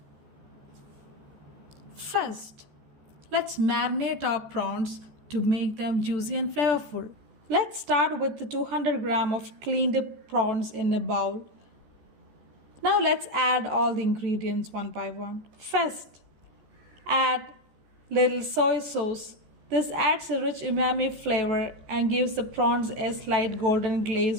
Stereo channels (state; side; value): late; left; 14 ms